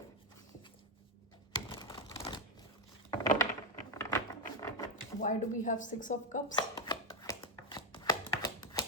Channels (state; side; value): normal; both; correlation 0.07